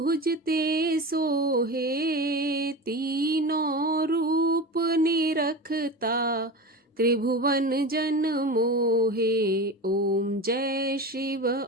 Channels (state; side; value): normal; both; correlation 0.28